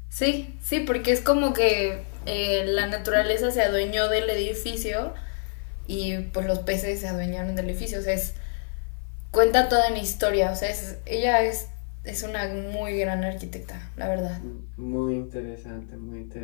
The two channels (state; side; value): silent; right; 61 dB below the other